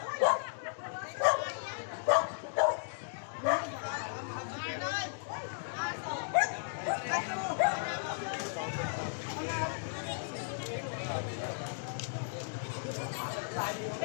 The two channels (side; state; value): right; silent; digital silence